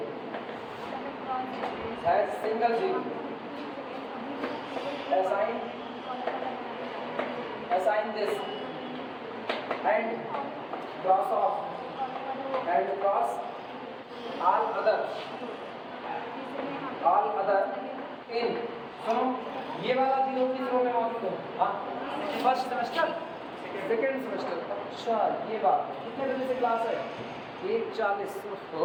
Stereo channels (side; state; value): both; identical; correlation 1.00